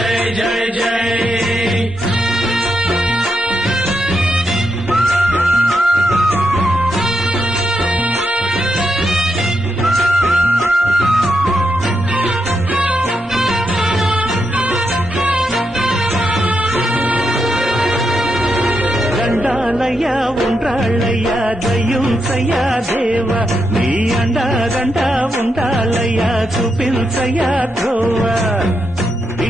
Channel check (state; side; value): normal; both; correlation 0.83